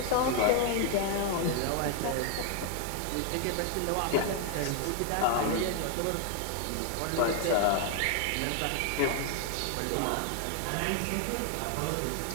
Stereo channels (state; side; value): different; both; correlation 0.00